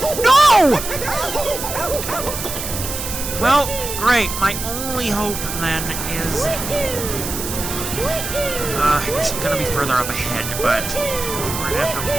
No! Well, great. My only hope, then, is... it's gonna be further up ahead, but we're gonna have to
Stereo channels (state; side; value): noise; right; hiss, 6 dB below the sound